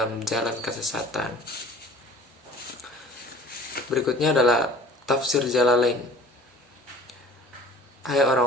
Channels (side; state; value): both; normal; correlation 0.47